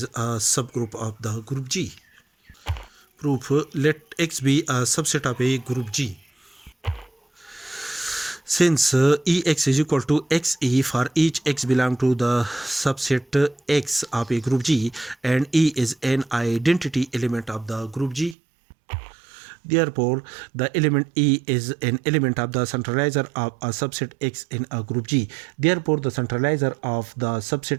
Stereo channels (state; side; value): drops out; left; at 18.4 s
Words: a subgroup of the group G. Proof: let X be a subset of a group G. Since Ex is equal to Xe for each X belong to the subset X of a group G, and E is an identity element of the group G, therefore, the element E is an element of the centralizer of a subset X in a group G. Therefore, the centralizer of the